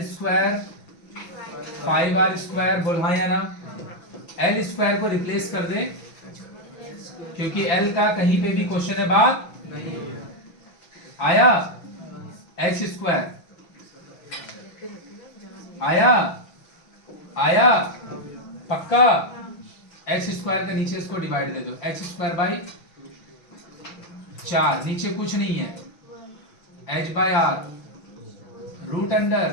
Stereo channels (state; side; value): late; right; 6.0 ms